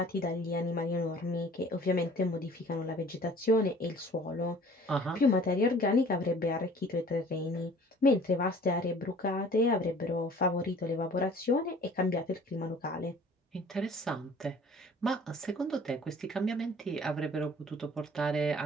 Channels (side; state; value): both; normal; correlation 0.49